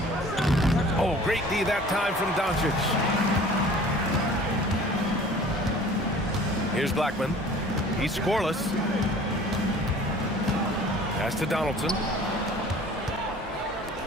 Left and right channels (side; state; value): both; normal; correlation 0.47